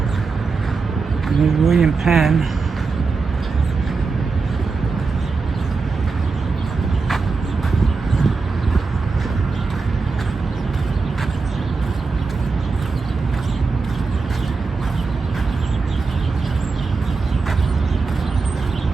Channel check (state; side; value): quieter; left; 4.4 dB